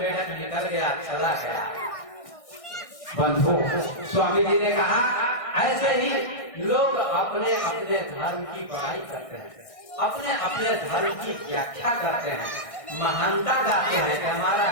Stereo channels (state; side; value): late; right; 1.6 ms